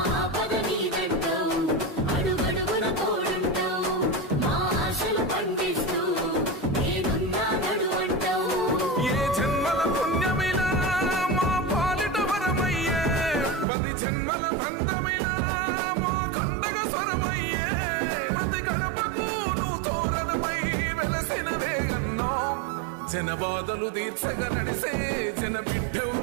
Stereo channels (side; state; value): left; drops out; at 13.7 s